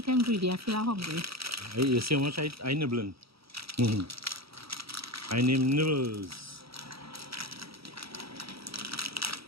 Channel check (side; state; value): left; late; 0.76 ms